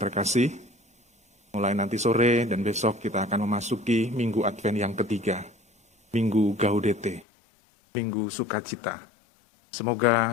mulai nanti sore dan besok kita akan memasuki Minggu Advent yang ketiga, Minggu Gaudete, Minggu Sukacita.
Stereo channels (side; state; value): right; drops out; at 7.2 s